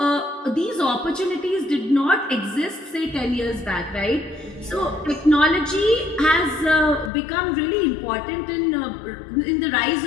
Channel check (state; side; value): drops out; right; at 7.1 s